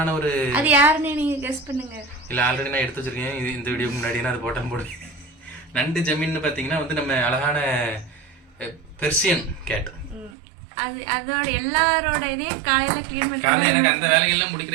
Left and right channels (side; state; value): left; drops out; at 10.4 s